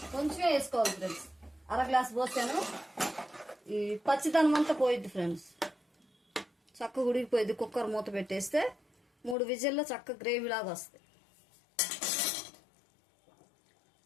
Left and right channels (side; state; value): right; drops out; at 9.3 s